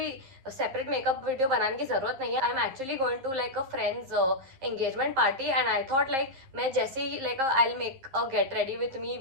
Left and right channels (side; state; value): left; late; 11 ms